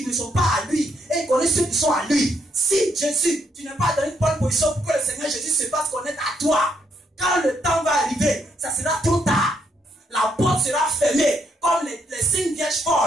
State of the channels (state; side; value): normal; both; correlation 0.75